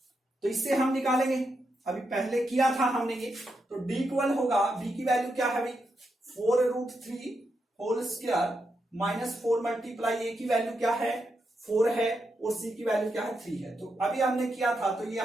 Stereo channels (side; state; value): both; normal; correlation 0.84